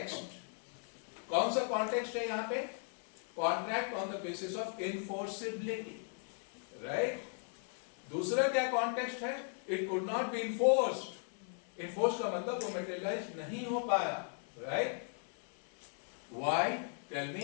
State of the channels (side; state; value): right; silent; 53 dB below the other